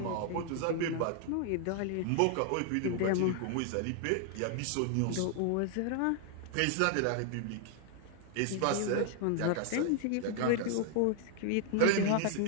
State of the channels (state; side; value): different; both; correlation 0.00